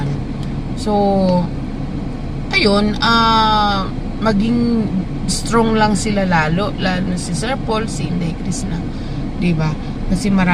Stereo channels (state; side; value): identical; both; correlation 1.00